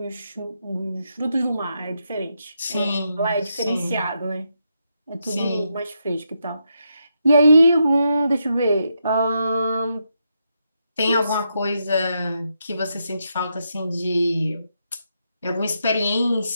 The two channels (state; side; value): inverted; both; correlation -0.82